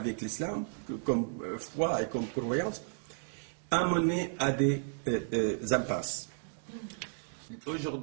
l'islam, comme foi et comme croyance, a mené à des impasses.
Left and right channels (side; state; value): left; silent; digital silence